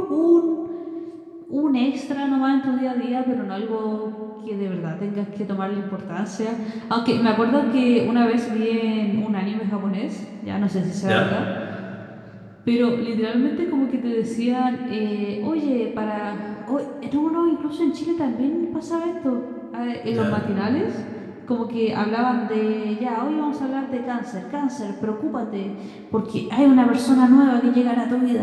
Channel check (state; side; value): identical; both; correlation 1.00